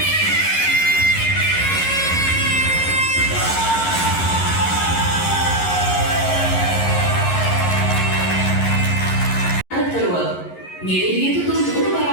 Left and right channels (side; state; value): right; late; 11 ms